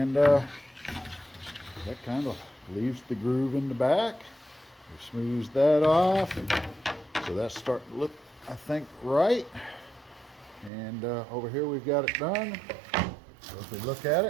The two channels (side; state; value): left; drops out; at 10.7 s